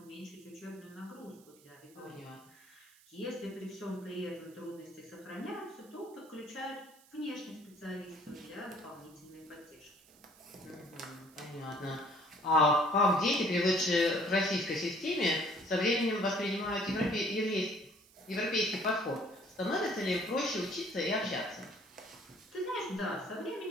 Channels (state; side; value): noise; right; hiss, 26 dB below the sound